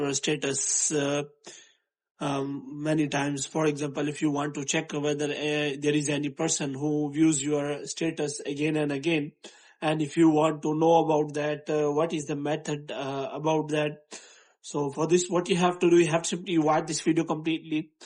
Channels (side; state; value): both; identical; correlation 1.00